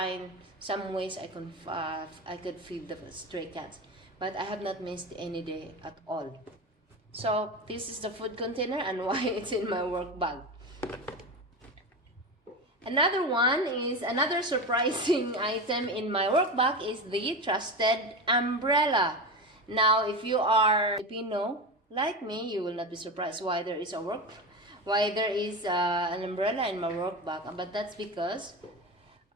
some ways I could feed the stray cats, but I have not missed any day at all. So this is the food container and why it's in my work bag. Another surprising item in my work bag is the trusted umbrella. Now, if you are Filipino like me, you will not be surprised why there is an umbrella in my work bag. But that's because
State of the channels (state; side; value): normal; both; correlation 0.22